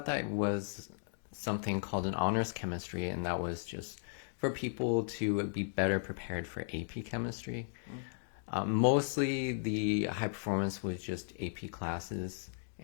that was something called an honors chemistry, and that was just for people to be better prepared for AP chemistry. Mostly the high performance was just AP classes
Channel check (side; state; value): right; silent; digital silence